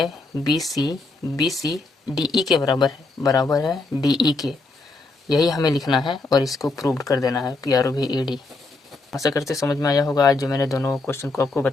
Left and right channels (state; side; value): quieter; right; 3.4 dB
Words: BC DE के बराबर है DE के, यही हमें लिखना है और इसको प्रूव कर देना है PROVED। आशा करते समझ में आया होगा आज जो मैंने दोनों क्वेश्चन को आपको